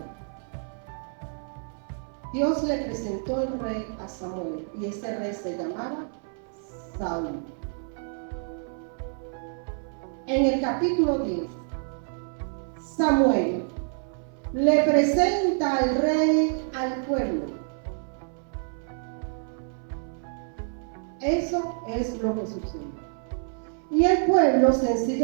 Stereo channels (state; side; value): silent; left; 60 dB below the other